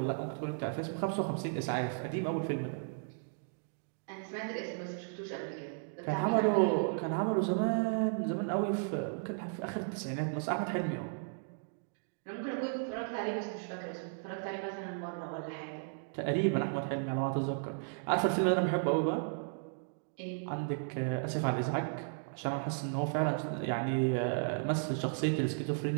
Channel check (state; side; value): silent; left; digital silence